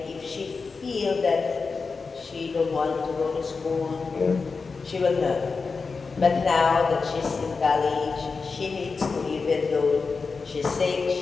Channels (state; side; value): quieter; right; 4.6 dB